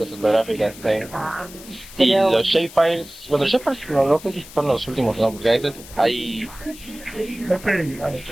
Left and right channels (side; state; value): left; noise; hiss, 17 dB below the sound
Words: ortográficas. Y los shapefiles, bueno, los shapefiles no sé si son los últimos, ¿no? Porque a veces hay...